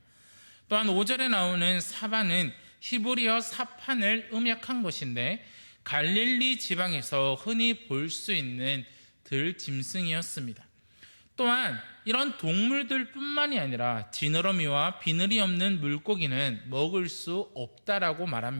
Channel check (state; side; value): inverted; both; correlation -1.00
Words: 또한 5절에 나오는 사바는 히브리어 사판을 음역한 것인데 갈릴리 지방에서 흔히 볼 수 있는 들짐승이었습니다. 또한 이런 동물들 뿐만이 아니라 지느러미와 비늘이 없는 물고기는 먹을 수 없다라고